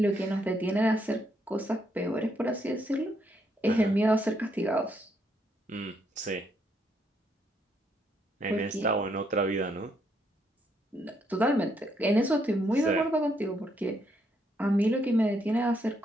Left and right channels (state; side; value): normal; both; correlation 0.74